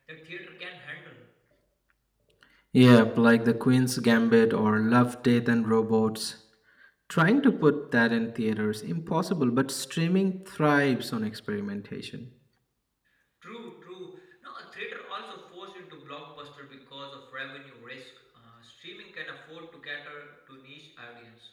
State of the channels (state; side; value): identical; both; correlation 1.00